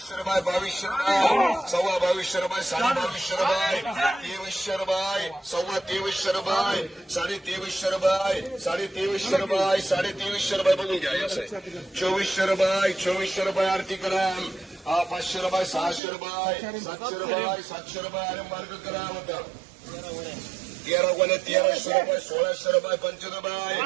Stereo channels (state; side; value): drops out; left; at 16.0 s